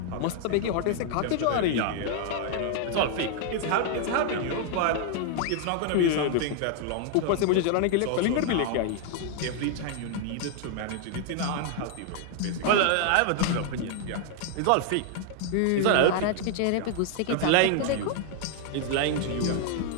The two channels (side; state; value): both; different; correlation 0.00